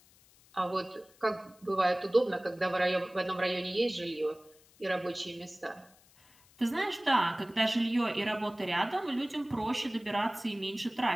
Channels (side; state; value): left; noise; hiss, 28 dB below the sound